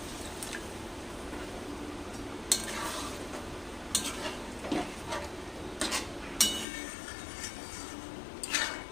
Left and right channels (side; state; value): right; drops out; at 6.7 s